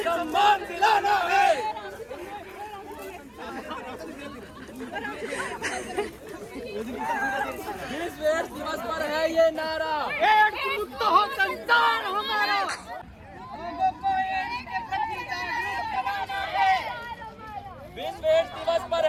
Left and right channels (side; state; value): both; identical; correlation 1.00